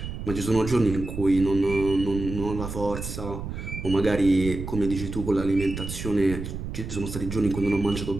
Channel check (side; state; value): right; noise; rumble, 7 dB below the sound